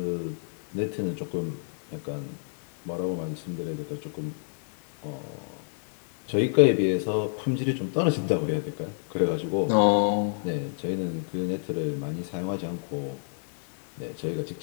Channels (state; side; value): silent; right; digital silence